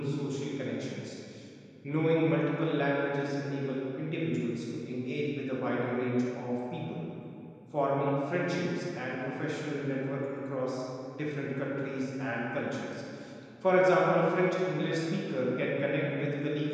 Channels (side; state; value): both; identical; correlation 1.00